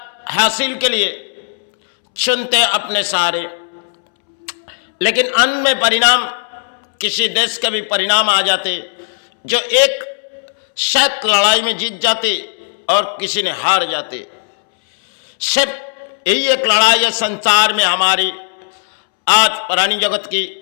हासिल के लिए चुनते अपने सहारे, लेकिन अंत में परिणाम किसी देश के भी परिणाम आ जाते जो एक शायद लड़ाई में जीत जाते और किसी ने हार जाते। सिर्फ यही एक लड़ाई है संसार में हमारी, आज पुरानी जगत की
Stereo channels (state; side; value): silent; right; 68 dB below the other